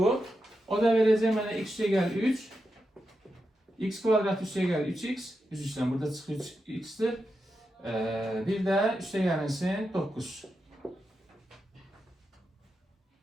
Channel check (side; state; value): both; normal; correlation 0.88